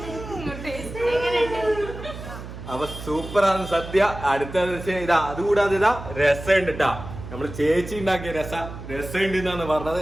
അപ്പൊ സൂപ്പറാണ് സദ്യ. അടുത്ത ഇതാ, അതുകൂടാതെ ഇതാ രസമുണ്ട് കേട്ടാ. നമ്മള് ചേച്ചി ഉണ്ടാക്കിയ രസമുണ്ട് എന്നാണ് പറഞ്ഞത്.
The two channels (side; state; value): right; noise; hum, 11 dB below the sound